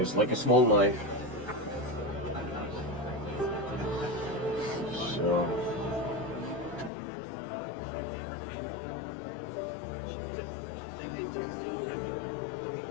like a small knife. So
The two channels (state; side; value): drops out; right; at 6.9 s